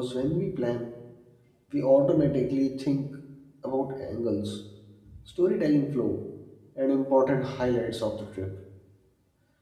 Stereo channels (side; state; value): both; identical; correlation 1.00